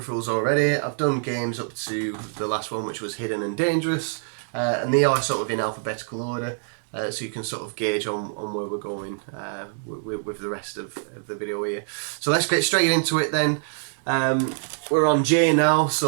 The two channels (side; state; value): left; silent; digital silence